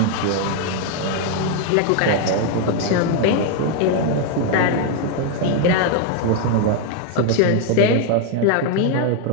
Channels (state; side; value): different; both; correlation 0.00